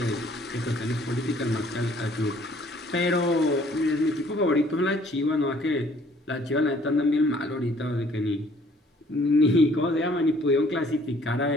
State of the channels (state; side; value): normal; both; correlation 0.59